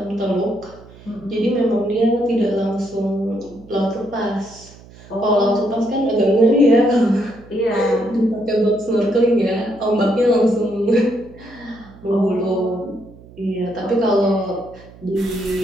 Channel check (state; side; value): noise; right; hum, 22 dB below the sound